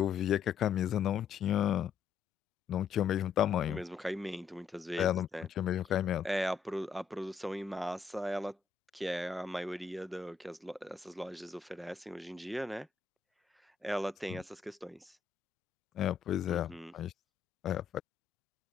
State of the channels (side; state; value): right; quieter; 6.4 dB